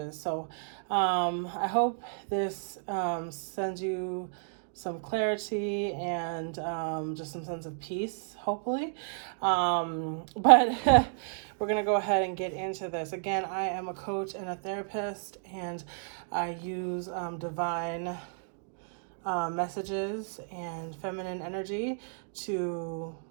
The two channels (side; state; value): left; silent; digital silence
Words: So, I hope this sends you some clarity and just some sense of peace, hopefully. But we're going to go ahead and get into this. Again, I am a coach and a therapist, and I use divine messages and feminine energy to